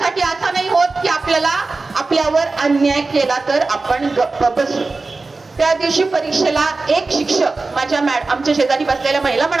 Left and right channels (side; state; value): left; quieter; 3.7 dB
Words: असं नाही होत की आपल्याला आपल्यावर अन्याय केला तर आपण गप्प बसू. त्या दिवशी परीक्षेला एक शिक्षक माझ्या आमच्या शेजारी बसलेल्या महिला